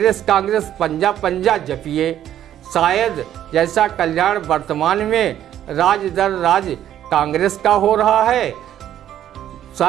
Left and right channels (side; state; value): left; quieter; 11.2 dB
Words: पंजा पंजा जपिए। शायद जैसा कल्याण वर्तमान में राज दर राज कांग्रेस का हो रहा है,